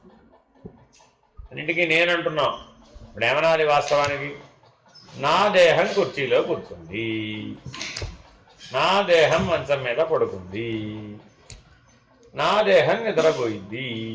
అన్నిటికీ నేనంటున్నాం. ఇప్పుడు ఏమనాలి వాస్తవానికి? నా దేహం కుర్చీలో కూర్చుంది, నా దేహం మంచం మీద పడుకుంది, నా దేహం నిద్రపోయింది,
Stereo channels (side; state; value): both; identical; correlation 1.00